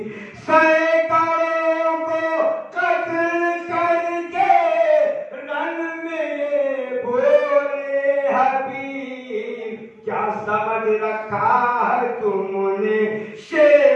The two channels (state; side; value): identical; both; correlation 1.00